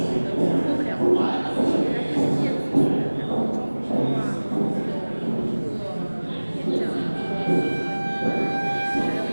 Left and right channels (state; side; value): inverted; both; correlation -1.00